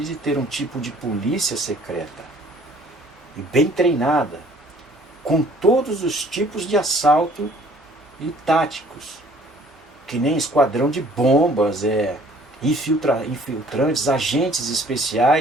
de ter um tipo de polícia secreta e bem treinada, com todos os tipos de assalto e táticos. que nem esquadrão de bombas, infiltrantes, agentes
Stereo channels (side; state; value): both; normal; correlation 0.55